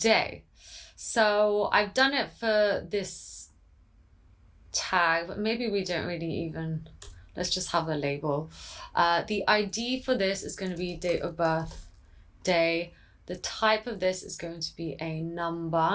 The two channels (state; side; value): identical; both; correlation 1.00